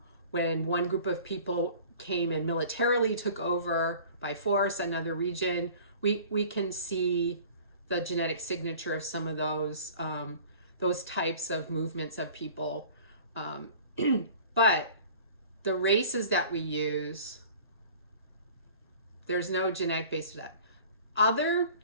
when one group of people came and militarily took over by force another region. We can see the genetic signature of some of those types of movements of people. But the races that we use, there's no genetic base to that. Other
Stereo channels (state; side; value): inverted; both; correlation -0.46